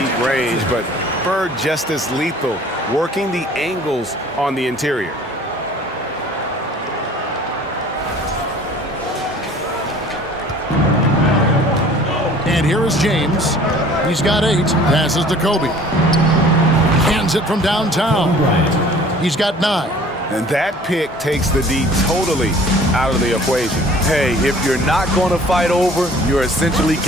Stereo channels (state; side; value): normal; both; correlation 0.50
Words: range, but Bird just as lethal, working the angles on the interior. And here is James. He's got 8. Passes to Kobe. Hands it from downtown. He's got 9. And that pick takes the D totally out of the equation. Hey, if you're not going to fight over, you're essentially